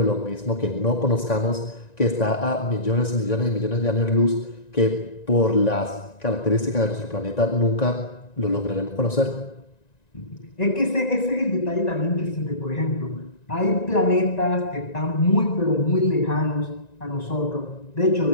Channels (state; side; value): late; right; 1.9 ms